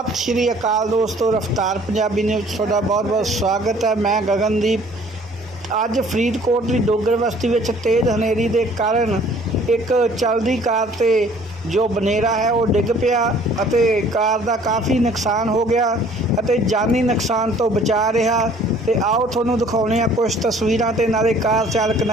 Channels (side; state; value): both; normal; correlation 0.55